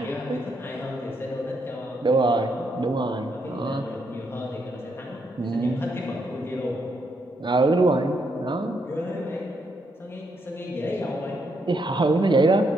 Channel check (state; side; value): normal; both; correlation 0.76